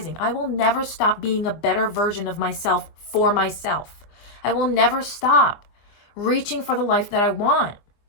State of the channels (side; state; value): right; late; 24 ms